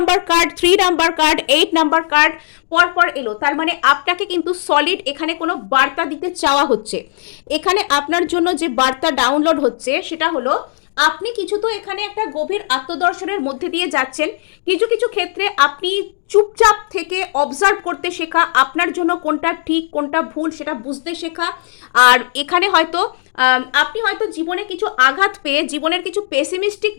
card, 3 number card, 8 number card পরপর এলো। তার মানে আপনাকে কিন্তু সলিড এখানে কোনো বার্তা দিতে চাওয়া হচ্ছে। এখানে আপনার জন্য যে বার্তা ডাউনলোড হচ্ছে সেটা হলো আপনি কিছু তো এখানে একটা গভীর আত্মদর্শনের মধ্যে দিয়ে যাচ্ছেন, কিছু কিছু ক্ষেত্রে আপনি চুপচাপ থেকে অবজার্ভ করতে শেখা, আপনার জন্য কোনটা ঠিক কোনটা ভুল সেটা বুঝতে শেখা। আর এখানে হয়তো আপনি হয়তো জীবনে কিছু আঘাত পেয়ে জীবনের কিছু পেসিমিস্টিক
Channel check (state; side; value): silent; right; digital silence